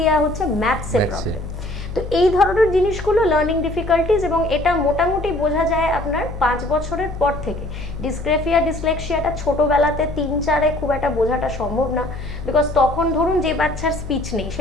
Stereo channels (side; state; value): left; noise; hum, 9 dB below the sound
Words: হচ্ছে ম্যাথসে প্রবলেম। তো এই ধরনের জিনিসগুলো লার্নিং ডিফিকাল্টিজ, এবং এটা মোটামুটি বোঝা যায় আপনার 5 বছরের পর থেকে। ডিসগ্রাফিয়া ডিসলেক্সিয়াটা ছোটোবেলাতে 3-4-এ খুব একটা বোঝাটা সম্ভব না, বিকজ তখন ধরুন যে বাচ্চার স্পিচ নেই,